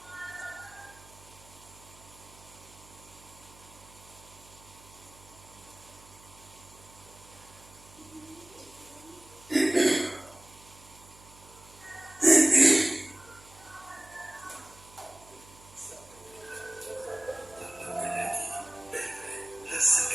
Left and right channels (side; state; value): right; noise; hum, 23 dB below the sound